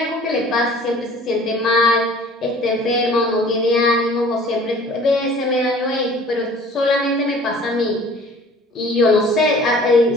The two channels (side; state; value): both; normal; correlation 0.49